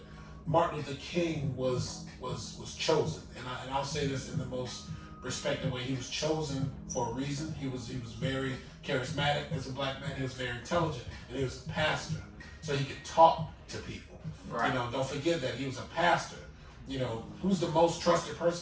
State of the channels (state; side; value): identical; both; correlation 1.00